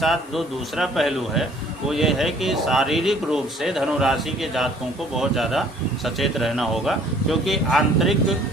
जो दूसरा पहलू है वो ये है कि शारीरिक रूप से धनु राशि के जातकों को बहुत ज़्यादा सचेत रहना होगा, क्योंकि आंतरिक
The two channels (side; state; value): both; normal; correlation 0.57